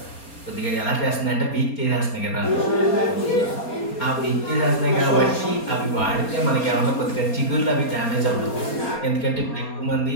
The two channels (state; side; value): late; right; 4.3 ms